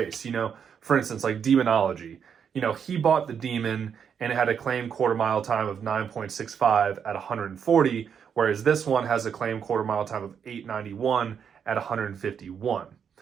For instance, like Demonology. He bought the Demon and it had a claimed quarter mile time of 9.65 at 140, whereas this one has a claimed quarter mile time of 891 at 151.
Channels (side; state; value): left; quieter; 7.4 dB